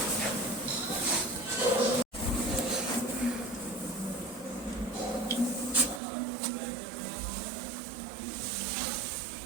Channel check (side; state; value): left; drops out; at 6.0 s